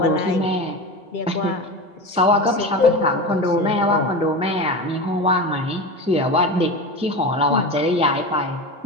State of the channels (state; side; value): normal; both; correlation 0.25